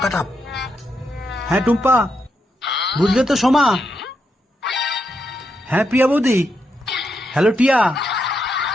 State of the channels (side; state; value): both; normal; correlation 0.82